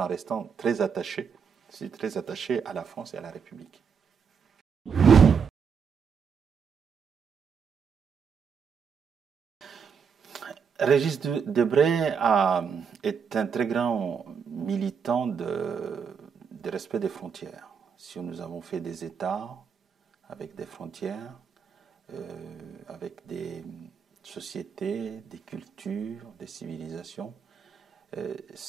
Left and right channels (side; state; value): left; quieter; 6.4 dB